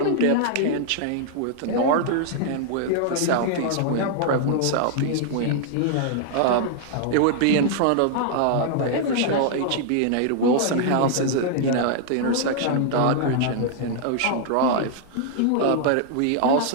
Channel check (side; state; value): both; different; correlation -0.01